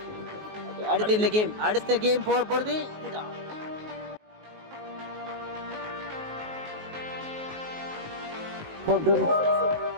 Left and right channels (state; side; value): late; left; 19 ms